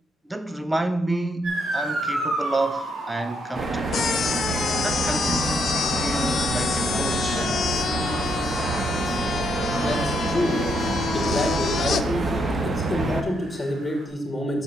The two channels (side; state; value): both; normal; correlation 0.76